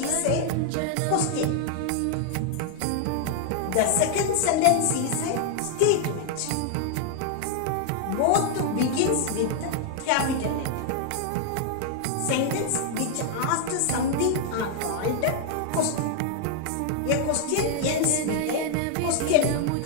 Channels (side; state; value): both; different; correlation 0.00